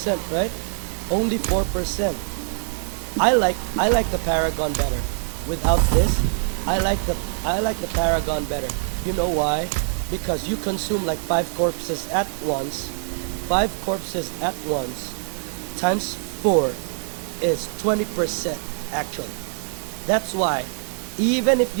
right? Only 4%. I like the Paragon better. Without this, I like the Paragon better. You know why? Because you consume like 5 corpses at once. 5 corpses at once times 4 is 20% actually. That's why even if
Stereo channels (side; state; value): left; silent; digital silence